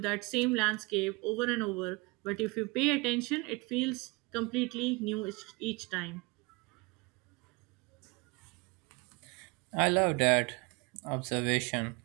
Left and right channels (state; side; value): quieter; left; 26.5 dB